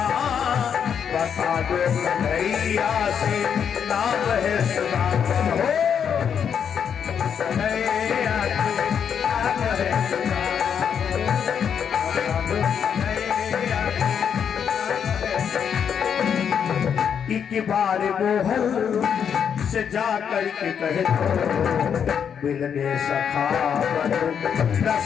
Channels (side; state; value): right; quieter; 7.7 dB